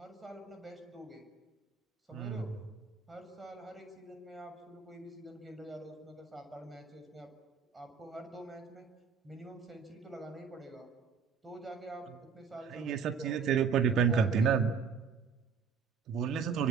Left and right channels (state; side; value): quieter; left; 6.1 dB